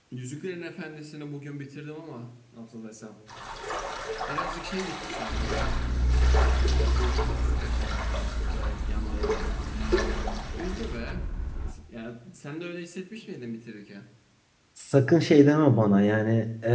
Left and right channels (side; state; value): both; identical; correlation 1.00